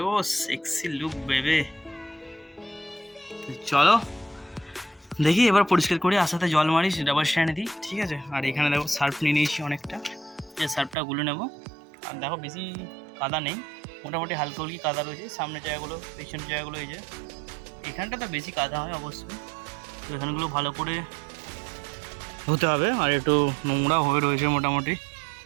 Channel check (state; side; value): drops out; left; at 11.0 s